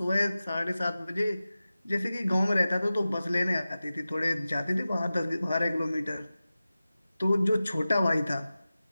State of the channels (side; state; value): both; inverted; correlation -0.95